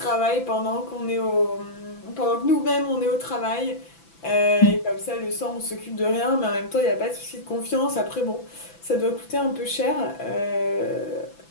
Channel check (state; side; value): late; right; 6.0 ms